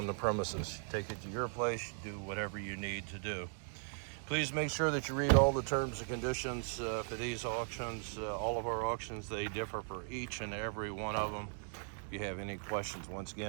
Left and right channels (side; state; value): left; silent; 52 dB below the other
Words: the premises. Take it to your place, do whatever you need to do. Please make sure that you read all the terms and conditions for these auctions. All of our auctions, they differ for each and every one of them. If you have any questions, once